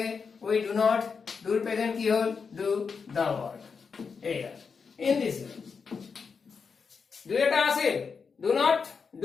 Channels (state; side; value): quieter; right; 5.5 dB